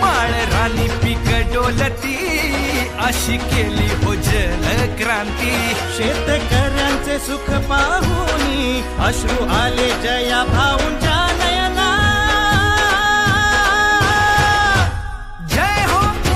माळ रानी पीक डोलती अशी केली हो जल क्रांती शेतकऱ्यांचे सुख पाहुनी अश्रू आले जया भाऊंच्या नयना जय हो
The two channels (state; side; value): identical; both; correlation 1.00